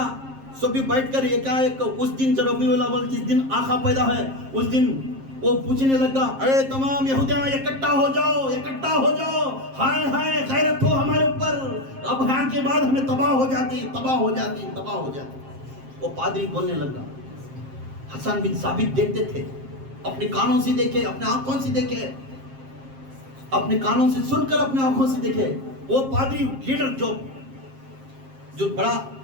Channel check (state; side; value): late; left; 7.5 ms